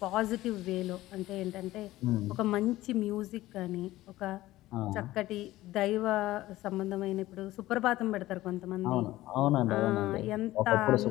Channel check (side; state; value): right; quieter; 16.5 dB